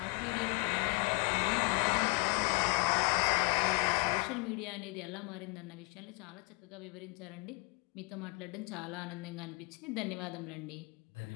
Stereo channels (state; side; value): quieter; right; 29.8 dB